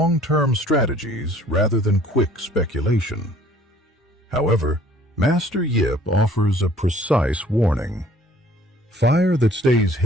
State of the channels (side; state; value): both; normal; correlation 0.55